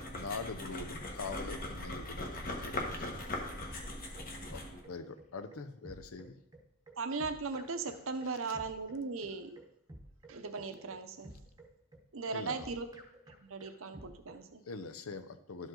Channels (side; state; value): both; normal; correlation -0.03